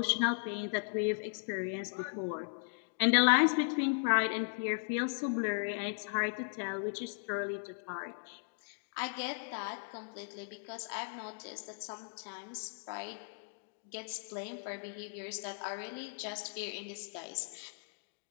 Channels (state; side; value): silent; right; digital silence